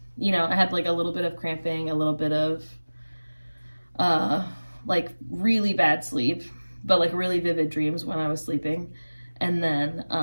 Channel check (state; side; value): inverted; both; correlation -1.00